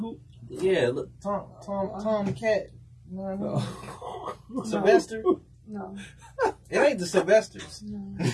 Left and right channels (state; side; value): identical; both; correlation 1.00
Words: Yeah, look, Tom the cat. You know what I mean? Sylvester? No. It ain't the Sylvesters. No.